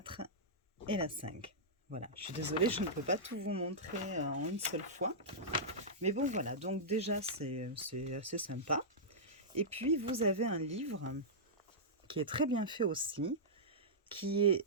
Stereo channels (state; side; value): normal; both; correlation -0.13